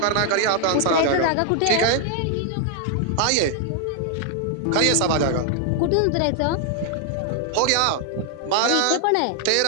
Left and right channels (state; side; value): different; both; correlation 0.00